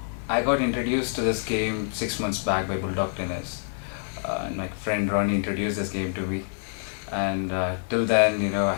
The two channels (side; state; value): right; silent; 61 dB below the other